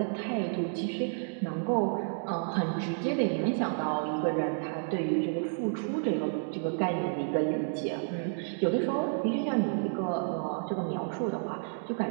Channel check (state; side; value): silent; left; digital silence